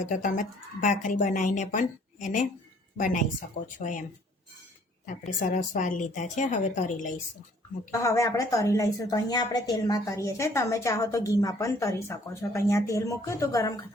તો તમે ભાખરી બનાવીને પણ એને બનાવી શકો છો એમ. આપણે સરસ વાર લીધા છે. હવે તરી લઈશું. હવે આપણે તરી લઈશું. તો અહીંયા આપણે તેલમાં તરીએ છીએ. તમે ચાહો તો ઘીમાં પણ તરી શકો છો. તો અહીંયા તેલ મૂક્યું તો ગરમ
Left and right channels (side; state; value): both; normal; correlation 0.59